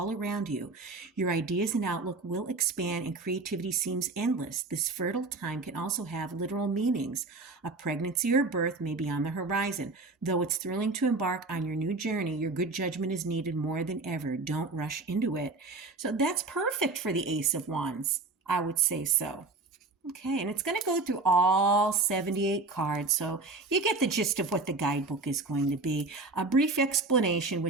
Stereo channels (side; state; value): left; quieter; 3.5 dB